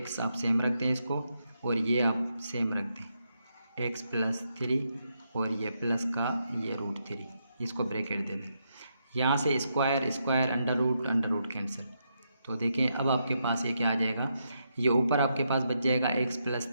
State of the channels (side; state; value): both; inverted; correlation -0.81